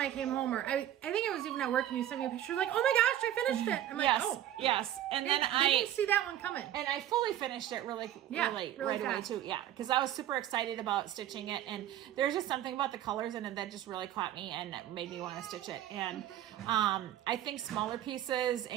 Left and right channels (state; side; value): quieter; left; 11.9 dB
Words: came home, or I think it was even at work, and you sent me a picture like, oh my gosh, I finished it. I'm like, oh. Yes. And then I didn't see that one coming. And I fully finished it really right away too. Yeah, because I was super excited about stitching it. And there's just something about the colors in it that just really caught me and made me want to stitch it. And I think smaller pieces